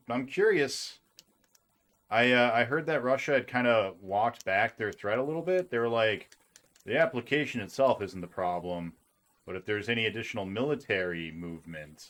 I'm curious. I heard that Russia had kind of walked back their threat a little bit. They were like, the application itself isn't the problem, but if there's any additional military movement,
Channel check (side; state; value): both; identical; correlation 1.00